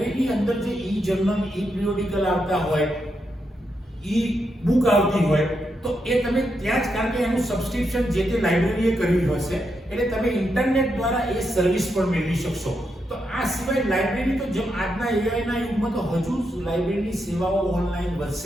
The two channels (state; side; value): normal; both; correlation 0.83